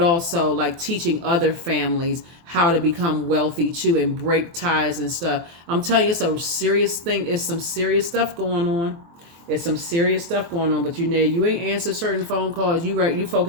like teaching other families how to become wealthy too and break ties and stuff. I'm telling you, it's a serious thing. It's some serious stuff going on. It's some serious stuff going on, but you ain't answer certain phone calls. You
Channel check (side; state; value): left; late; 24 ms